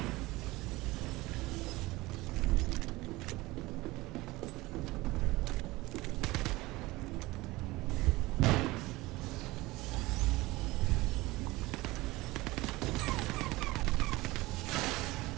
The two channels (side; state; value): left; quieter; 20.4 dB